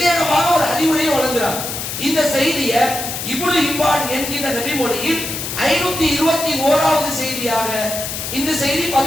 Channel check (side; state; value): left; noise; hiss, 5 dB below the sound